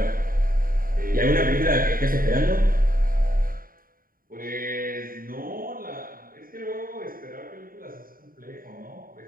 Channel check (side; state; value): left; late; 0.41 ms